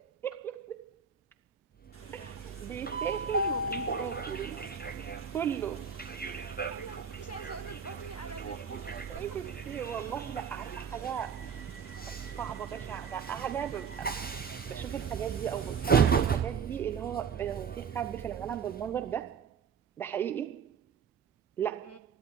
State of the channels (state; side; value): quieter; left; 6.5 dB